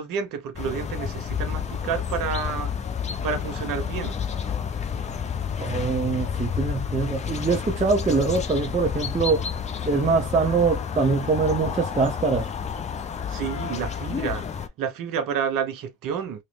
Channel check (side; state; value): both; normal; correlation 0.38